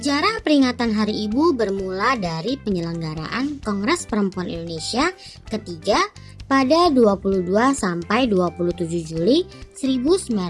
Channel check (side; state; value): both; identical; correlation 1.00